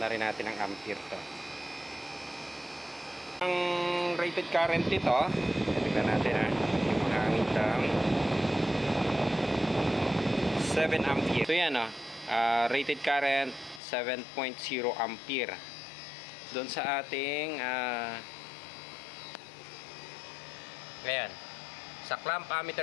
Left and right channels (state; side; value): drops out; right; at 13.8 s